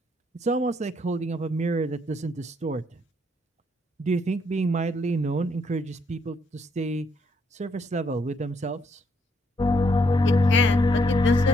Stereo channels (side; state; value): both; normal; correlation 0.72